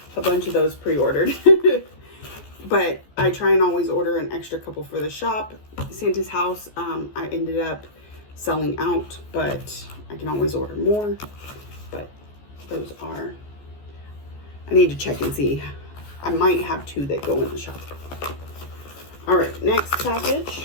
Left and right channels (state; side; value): late; right; 14 ms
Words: a bunch of those pre-ordered. But I try and always order an extra couple for the shop. Santa's House, I ended up selling out, but I can always order more. But those are, I need to check and see. I might have 2 that go in the shop. All right, next